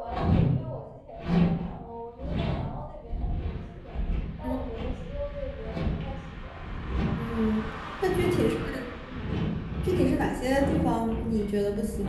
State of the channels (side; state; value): both; identical; correlation 1.00